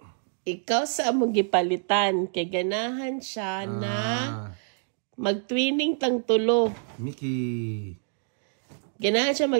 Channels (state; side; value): silent; left; digital silence